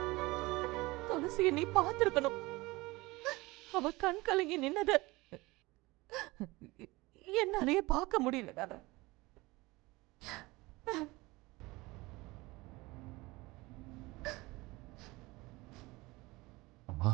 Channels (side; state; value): left; quieter; 21.8 dB